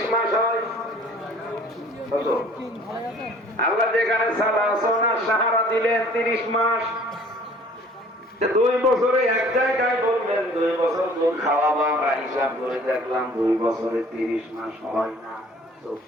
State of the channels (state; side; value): normal; both; correlation 0.52